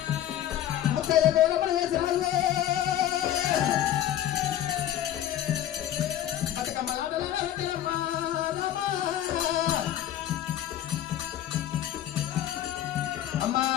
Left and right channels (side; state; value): right; quieter; 11.8 dB